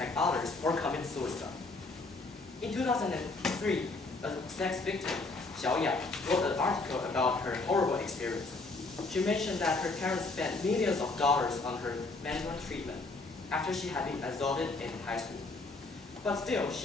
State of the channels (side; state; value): right; quieter; 3.5 dB